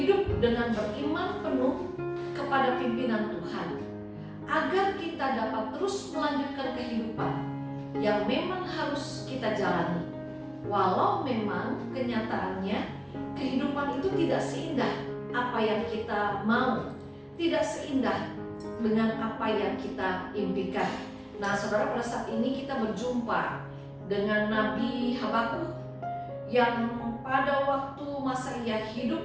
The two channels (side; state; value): both; identical; correlation 1.00